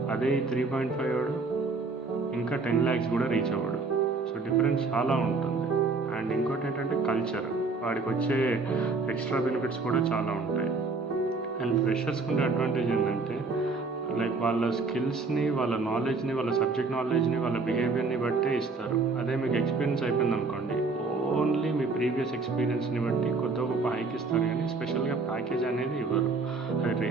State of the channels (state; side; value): quieter; left; 4.0 dB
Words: అదే ఈ 3.5 వాడు ఇంకా 10 lakhs కూడా రీచ్ అవ్వడు. సో డిఫరెన్స్ చాలా ఉంటుంది. అండ్ ఇంకోటి ఏంటంటే కల్చర్, వాడికి వచ్చే ఎక్స్ట్రా బెనిఫిట్స్ కూడా చాలా ఉంటాయి. అండ్ ఫ్రెషర్స్కి ఉండే అడ్వాంటేజ్ ఏంటంటే లైక్ వాళ్ళ స్కిల్స్ని, వాళ్ళ నాలెడ్జ్ని, వాళ్ళ సబ్జెక్ట్ నాలెడ్జ్ని, వాళ్ళ బిహేవియర్ని బట్టే ఇస్తారు. అదే మీకు ఎక్స్పీరియన్స్ అయిపోయింది అనుకోండి, ఓన్లీ మీ ప్రీవియస్ ఎక్స్పీరియన్స్ని బట్టి కొద్ది గొప్ప హైక్ ఇస్తారు, కానీ స్పెషల్గా ప్యాకేజ్ అనేది ఇవ్వరు. అది